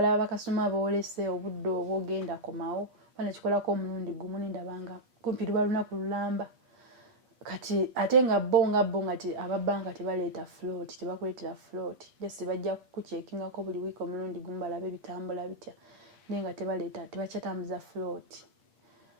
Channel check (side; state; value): left; late; 8.5 ms